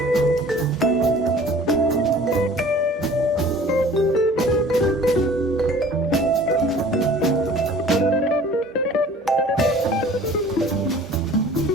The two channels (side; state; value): both; normal; correlation 0.47